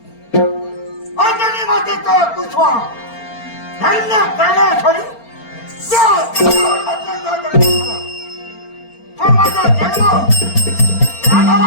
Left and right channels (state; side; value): late; right; 4.4 ms